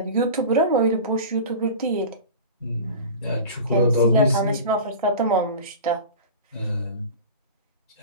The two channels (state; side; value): inverted; both; correlation -0.34